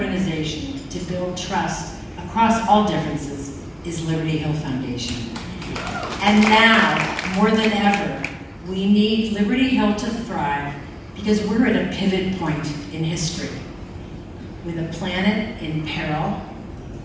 to build trust across all differences is Liberty Hill Foundation. And now, more than ever, we need Liberty Hill to thrive because we're at a pivot point in history with a planet in peril,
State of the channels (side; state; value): both; identical; correlation 1.00